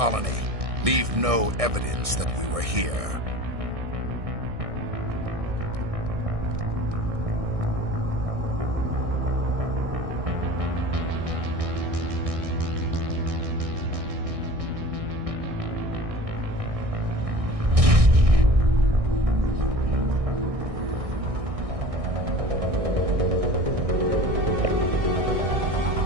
Leave no evidence that we were here.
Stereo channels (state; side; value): late; left; 1.6 ms